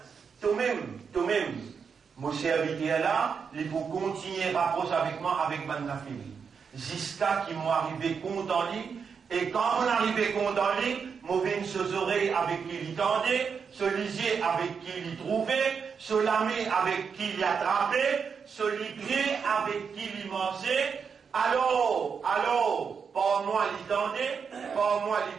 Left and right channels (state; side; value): quieter; left; 6.2 dB